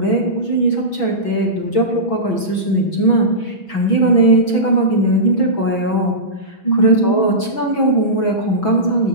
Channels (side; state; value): right; late; 6.1 ms